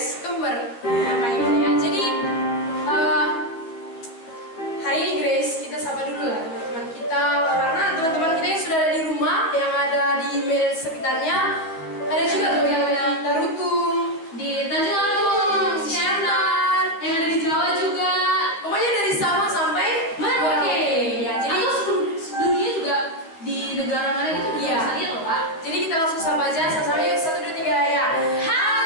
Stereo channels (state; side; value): late; right; 12 ms